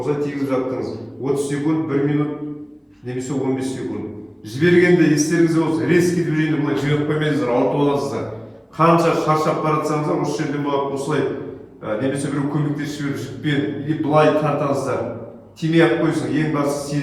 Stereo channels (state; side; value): identical; both; correlation 1.00